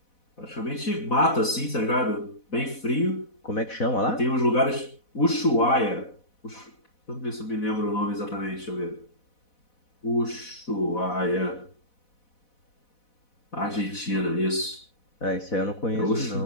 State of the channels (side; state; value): right; late; 4.1 ms